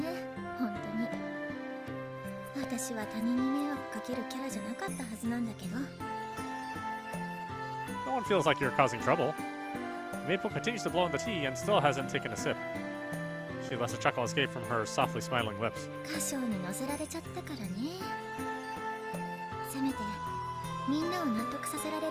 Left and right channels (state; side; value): identical; both; correlation 1.00